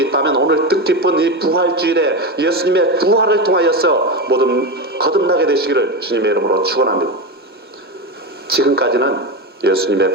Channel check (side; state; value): both; normal; correlation 0.17